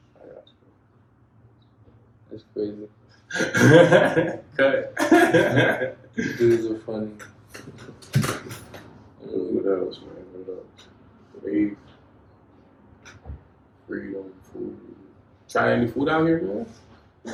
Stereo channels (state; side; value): identical; both; correlation 1.00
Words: I got That's crazy. you. Cut. Dudes are funny. What else, man? What else? Faith, freedom, food. Try any food out here, man?